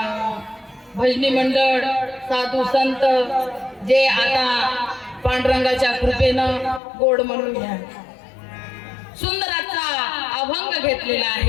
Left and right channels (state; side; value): drops out; right; at 6.8 s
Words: भजनी मंडळ साधू संत जे आता पांडुरंगाच्या कृपेनं गोड म्हणून घ्या सुंदराचा अभंग घेतलेला